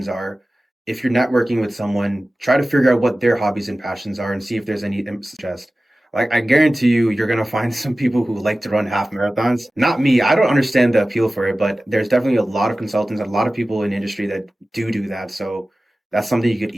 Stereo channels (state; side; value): normal; both; correlation 0.96